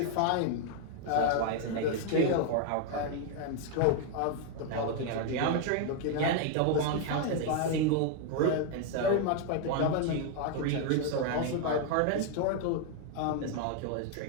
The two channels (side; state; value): both; different; correlation 0.00